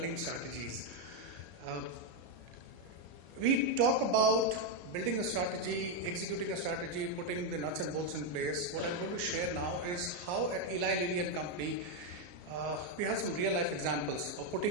strategies. We talk about building a strategy, executing a strategy, putting the nuts and bolts in place. What I'm going to share now is how at Eli Lilly and Company we have some real life examples of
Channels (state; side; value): late; left; 34 ms